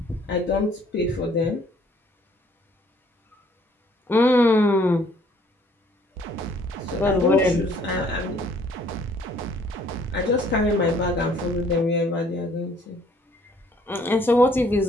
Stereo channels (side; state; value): both; normal; correlation 0.61